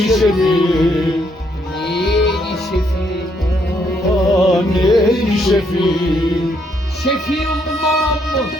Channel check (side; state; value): both; normal; correlation 0.73